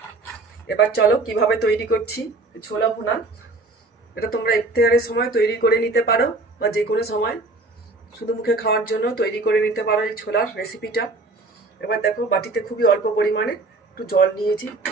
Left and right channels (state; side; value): quieter; left; 3.3 dB